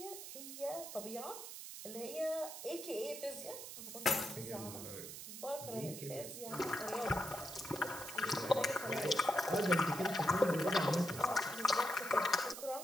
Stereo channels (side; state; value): right; noise; hiss, 10 dB below the sound